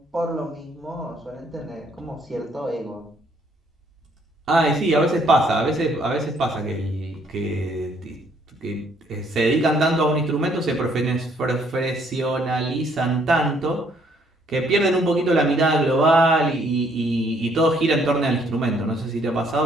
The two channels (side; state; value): both; normal; correlation 0.66